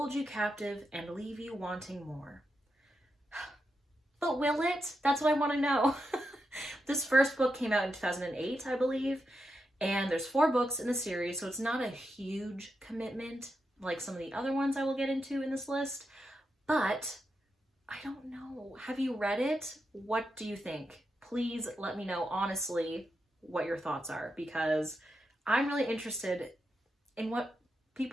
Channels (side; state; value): both; normal; correlation 0.86